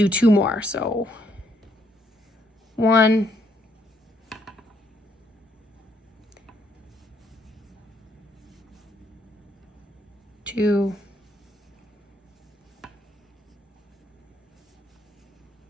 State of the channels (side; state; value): both; normal; correlation 0.71